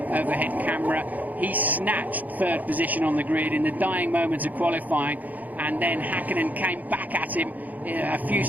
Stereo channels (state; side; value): late; left; 0.080 ms